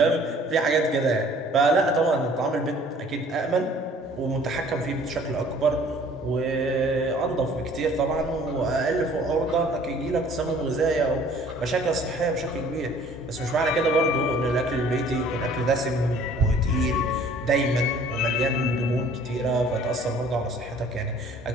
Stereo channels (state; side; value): normal; both; correlation 0.54